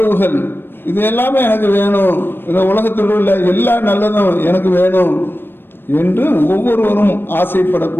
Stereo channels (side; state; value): right; late; 0.099 ms